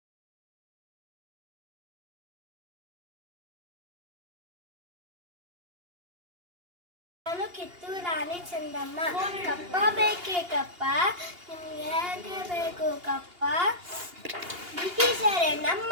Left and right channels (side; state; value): left; late; 2.8 ms